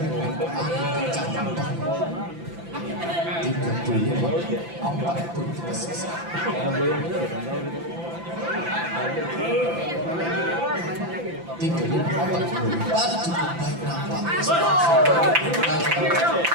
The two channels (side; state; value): left; late; 5.9 ms